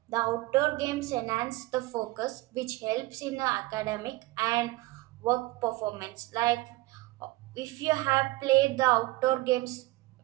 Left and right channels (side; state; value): left; quieter; 20.0 dB